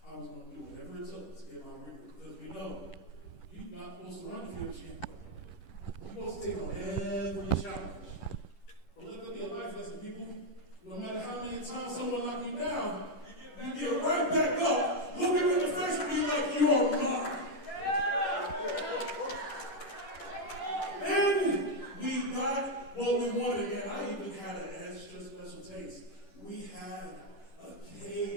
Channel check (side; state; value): right; late; 10 ms